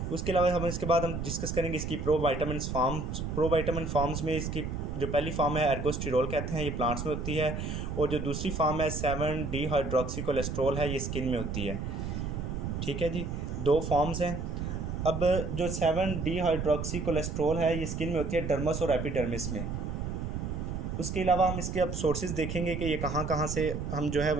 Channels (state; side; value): noise; right; rumble, 4 dB below the sound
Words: उसके अलावा हम इसके बाद हम डिस्कस करेंगे इसकी प्रोविटामिन फॉर्म्स में इसकी जो पहली फॉर्म है एर्गोस्टेरॉल कहते हैं, ये प्लांट्स में होती है, और जो दूसरी फॉर्म है 7 डिहाइड्रोक्सी कोलेस्ट्रॉल है, ये स्किन में होती है। ठीक है जी, दो फॉर्म्स हैं। अब जो 7 डिहाइड्रोक्सी कोलेस्ट्रॉल है ये स्किन में होती है डर्मस और एपिडर्मिस में। उसके अलावा हम इसके अब सोर्सेज देखेंगे कि ये कहाँ कहाँ से हम जो है